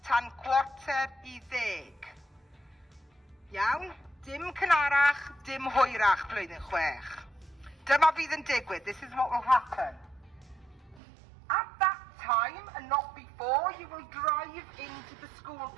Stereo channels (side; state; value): left; drops out; at 11.0 s